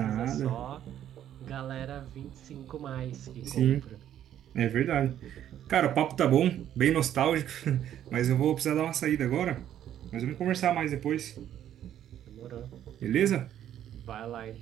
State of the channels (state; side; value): quieter; left; 10.9 dB